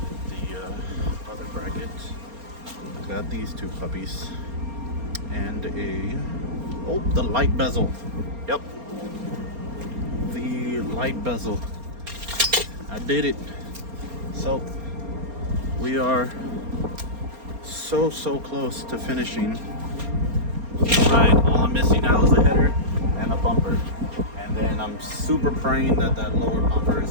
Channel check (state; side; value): late; left; 4.3 ms